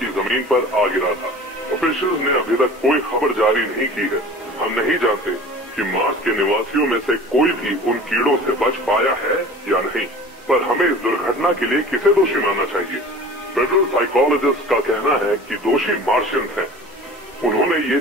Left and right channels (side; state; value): both; normal; correlation 0.42